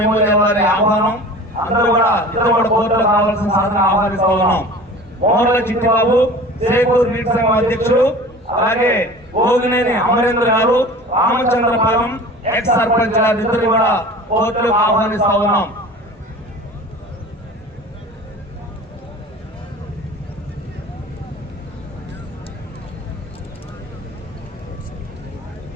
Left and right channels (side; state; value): both; normal; correlation 0.40